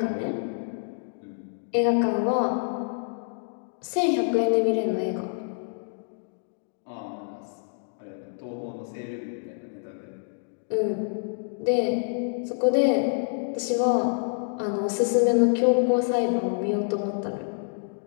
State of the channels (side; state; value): right; silent; digital silence